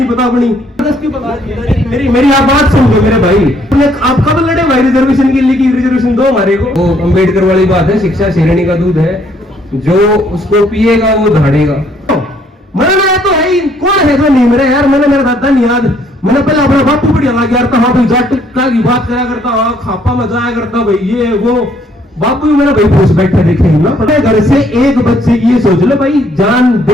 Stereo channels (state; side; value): normal; both; correlation 0.66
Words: पता अपनी। मेरी आप बात समझो मेरे भाई। आप कब लड़े भाई रिजर्वेशन के लिए? रिजर्वेशन दो हमारे को। वो अम्बेडकर वाली बात है, शिक्षा शेरनी का दूध है, जो उसको पिएगा वो धाड़ेगा। मरना तो है ही, कौन है जो नहीं मरे यार? मैंने मेरा दादा नहीं याद, मैंने पहले अपना बापू बढ़िया लग गया था। हाँ भाई जाट का की बात करा करता, हाँ खापा में जाया करता भाई, ये वो बापू भी मेरा भाई पूछ बैठे देखे ना। पता घर से एक बच्चे की ये सोच लो भाई, जान